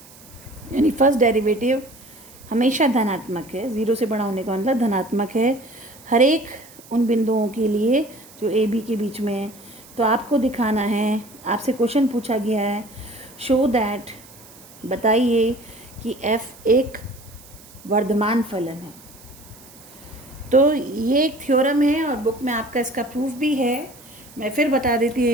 यानी फर्स्ट डेरिवेटिव हमेशा धनात्मक है, 0 से बड़ा होने का मतलब धनात्मक है हर एक उन बिंदुओं के लिए जो ए बी के बीच में है। तो आपको दिखाना है, आपसे क्वेश्चन पूछा गया है, शो दैट, बताइए कि f एक वर्धमान फलन है। तो ये एक थ्योरम है और बुक में आपका इसका प्रूफ भी है। मैं फिर बता देती हूँ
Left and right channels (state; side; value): noise; right; hiss, 22 dB below the sound